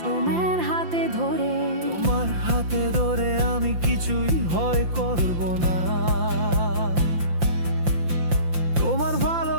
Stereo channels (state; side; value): late; left; 5.8 ms